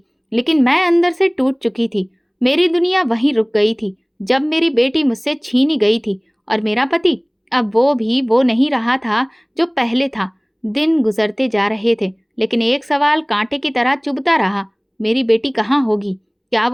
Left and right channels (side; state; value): both; identical; correlation 1.00